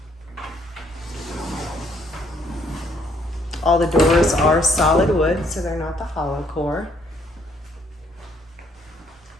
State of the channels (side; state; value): both; normal; correlation 0.67